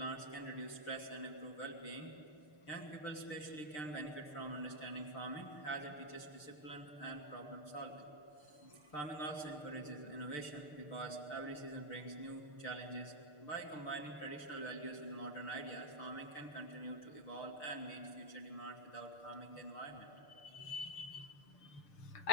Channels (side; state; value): right; late; 6.7 ms